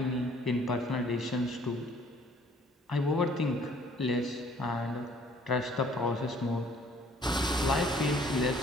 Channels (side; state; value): both; normal; correlation 0.58